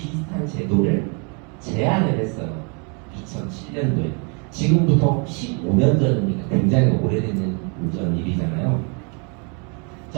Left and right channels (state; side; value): quieter; left; 35.7 dB